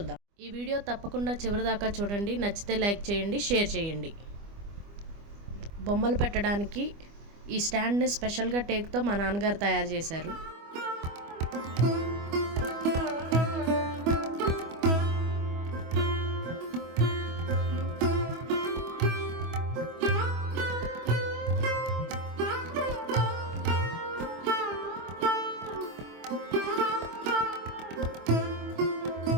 ఈ వీడియో తప్పకుండా చివరిదాకా చూడండి. నచ్చితే లైక్ చేయండి, షేర్ చేయండి. బొమ్మలు పెట్టడానికి ఈ స్టాండ్ని స్పెషల్గా టేక్తో మా నాన్నగారు తయారు చేశారు.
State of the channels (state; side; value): late; left; 25 ms